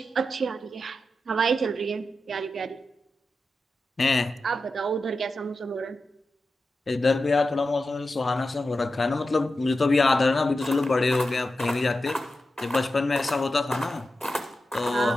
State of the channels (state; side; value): normal; both; correlation 0.91